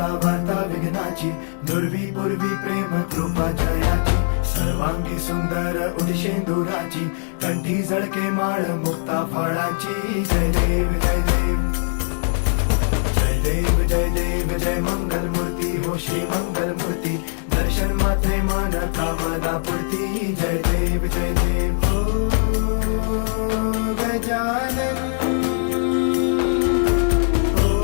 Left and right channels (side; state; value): right; silent; digital silence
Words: वार्ता विघ्नाची, दुर्वी पूर्वी प्रेम कृपा जयाची, सर्वांगी सुंदर उदिशेंदुराची, कंठी जळके माळ मुक्ता फळाची. जय देव जय देव जय देव जय देव जय मंगल मूर्ती हो श्री मंगल मूर्ती, दर्शन मात्रे मन कामना पूर्ती. जय देव जय देव ओ गजानन ओ